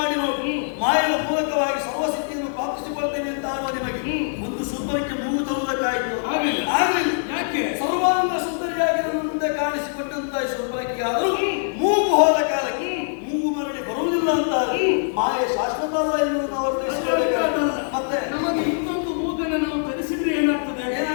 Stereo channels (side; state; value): right; silent; 63 dB below the other